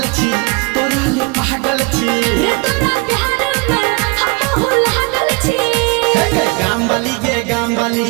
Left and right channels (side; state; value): left; quieter; 27.4 dB